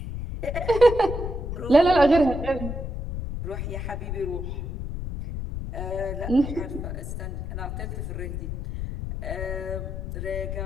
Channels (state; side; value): noise; left; rumble, 5 dB below the sound